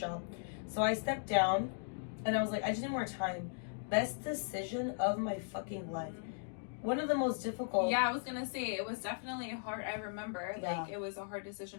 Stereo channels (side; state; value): right; silent; digital silence